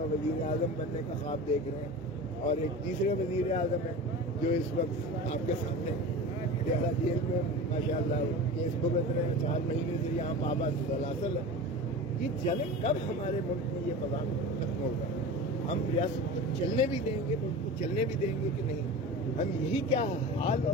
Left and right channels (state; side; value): normal; both; correlation 0.32